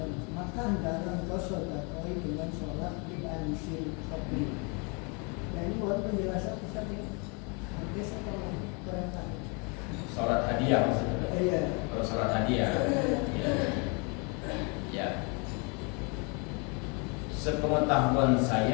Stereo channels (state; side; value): quieter; right; 33.3 dB